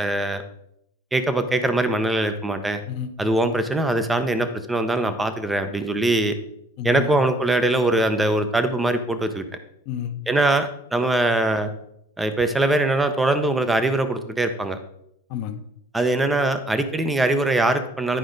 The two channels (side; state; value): both; normal; correlation 0.66